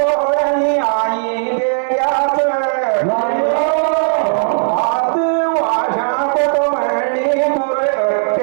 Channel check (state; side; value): silent; left; digital silence